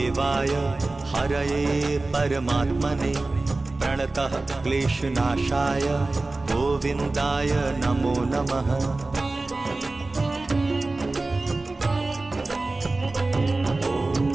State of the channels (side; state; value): left; quieter; 3.2 dB